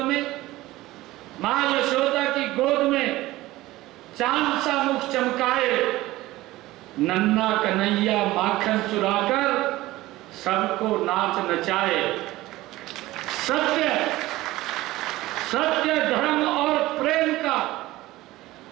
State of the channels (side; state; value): left; quieter; 17.7 dB